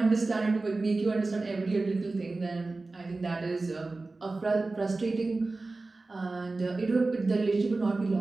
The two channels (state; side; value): quieter; left; 3.4 dB